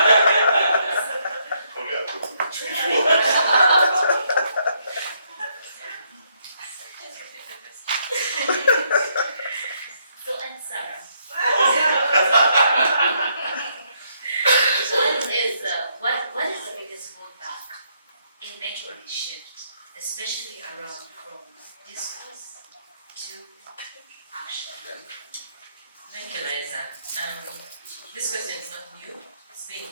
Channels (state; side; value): inverted; both; correlation -0.73